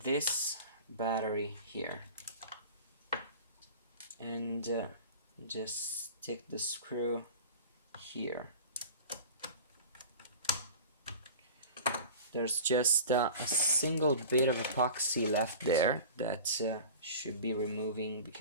battery here. And just stick the screw here. There's just a single bit of epoxy left there that should be removing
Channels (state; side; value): inverted; both; correlation -0.37